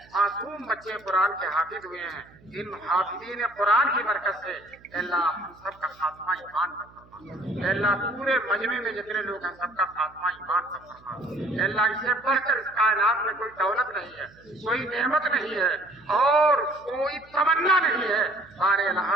معصوم بچے قرآن کے حافظ ہوئے ہیں. ان حافظین قرآن کی برکت سے اے اللہ ہم سب کا خاتمہ ایمان پر فرما. اے اللہ پورے مجمع میں جتنے لوگ ہیں سب کا خاتمہ ایمان پر فرما. اے اللہ اس سے بڑھ کر اس کائنات میں کوئی دولت نہیں ہے کوئی نعمت نہیں ہے اور کوئی تمنا نہیں ہے. ہمارے اللہ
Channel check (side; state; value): right; noise; hum, 27 dB below the sound